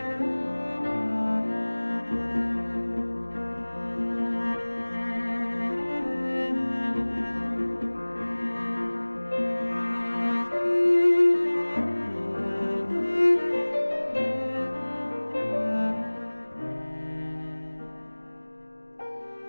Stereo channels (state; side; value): inverted; both; correlation -1.00